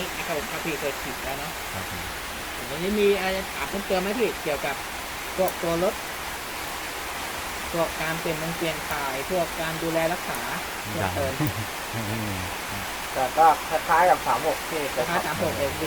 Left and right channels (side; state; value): both; identical; correlation 1.00